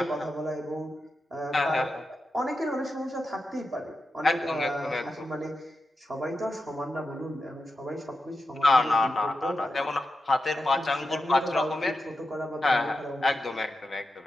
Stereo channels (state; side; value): normal; both; correlation 0.89